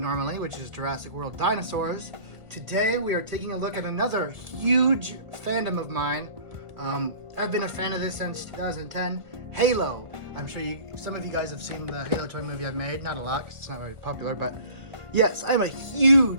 which is Jurassic World Dinosaurs. Today we are taking a look at another huge fandom of mine. I've been a fan of this since 2010, Halo. I'm sure some of you guys have seen the Halo toy movie I've made. Not a lot, 'cause it's not very popular, but yes, I'm a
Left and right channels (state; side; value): late; left; 1.7 ms